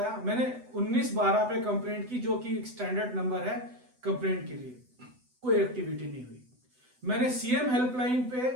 मैंने 1912 पे कंप्लेंट की जो कि एक स्टैंडर्ड नंबर है कंप्लेंट के लिए, कोई एक्टिविटी नहीं हुई। मैंने सीएम हेल्पलाइन पे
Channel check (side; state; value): left; late; 8.0 ms